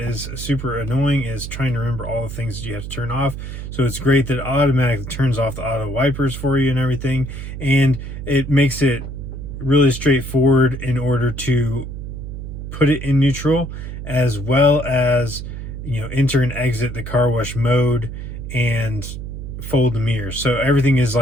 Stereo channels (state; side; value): noise; right; hum, 8 dB below the sound